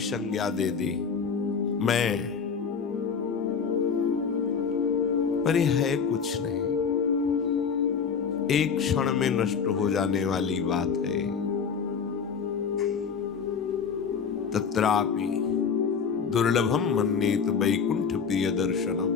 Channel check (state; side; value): quieter; right; 6.2 dB